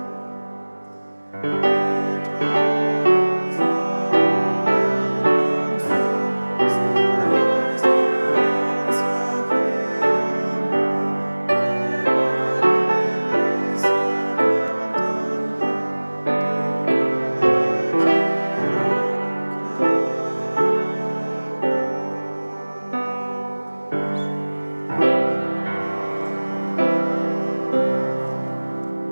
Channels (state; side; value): inverted; both; correlation -1.00